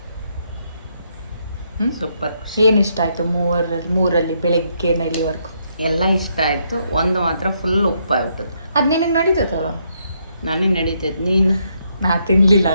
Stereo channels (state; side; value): inverted; both; correlation -0.75